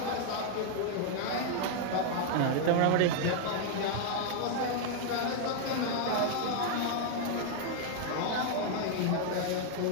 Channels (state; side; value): different; both; correlation 0.00